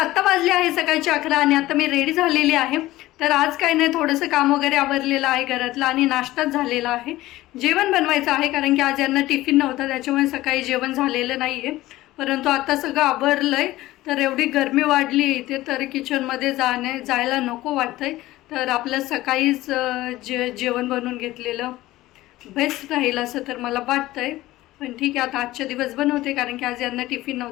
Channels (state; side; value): quieter; right; 16.9 dB